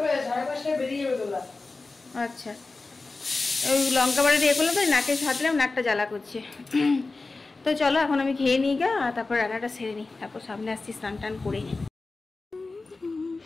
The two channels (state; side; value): quieter; right; 3.6 dB